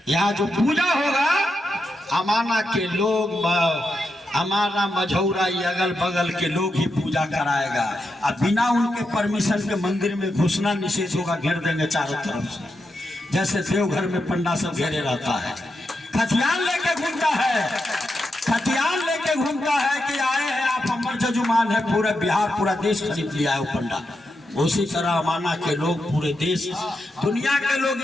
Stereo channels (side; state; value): both; normal; correlation 0.86